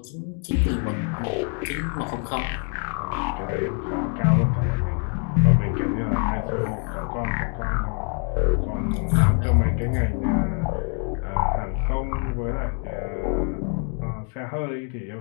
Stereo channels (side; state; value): right; quieter; 38.0 dB